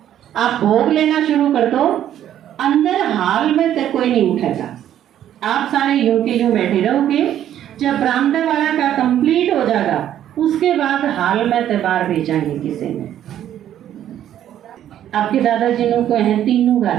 आप भोग लेना शुरू कर दो, अंदर हाल में तक कोई नहीं उठेगा। आप सारे यूं के यूं बैठे रहोगे। जब बरामदा वाला का कंप्लीट हो जाएगा उसके बाद हाल में तबार भेजेंगे किसी ने। आपके दादाजी को हैं तीनों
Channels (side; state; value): left; quieter; 11.1 dB